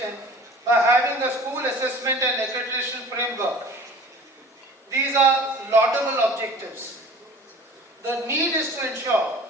by having a school assessment and accreditation framework. These are laudable objectives. The need is to ensure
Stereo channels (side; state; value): both; normal; correlation 0.44